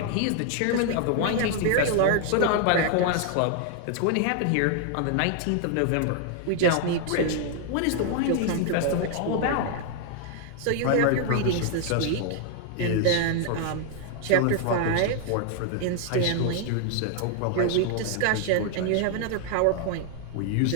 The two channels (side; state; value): both; different; correlation 0.00